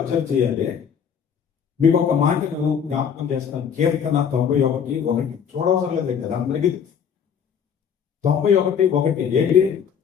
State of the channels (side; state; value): right; quieter; 7.5 dB